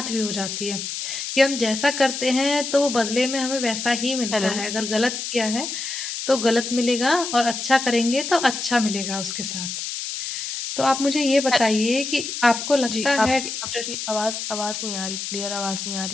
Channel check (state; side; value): noise; left; hiss, 5 dB below the sound